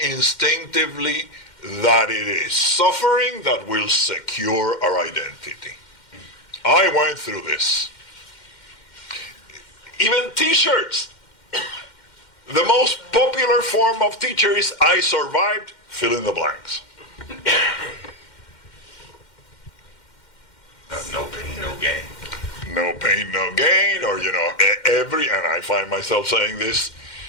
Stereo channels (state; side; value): late; right; 2.1 ms